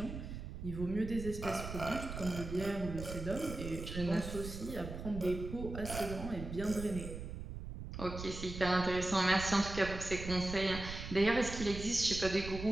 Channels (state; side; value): noise; right; rumble, 8 dB below the sound